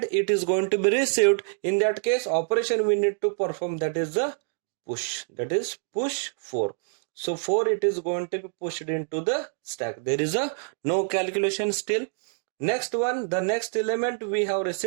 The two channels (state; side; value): silent; left; digital silence